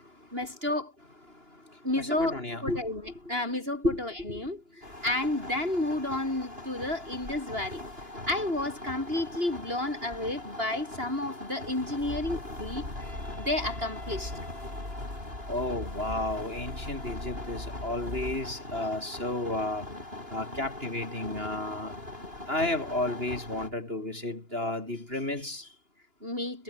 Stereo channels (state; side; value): late; left; 2.9 ms